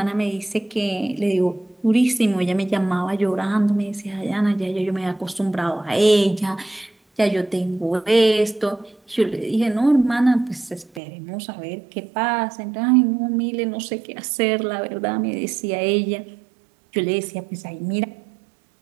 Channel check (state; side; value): drops out; left; at 11.0 s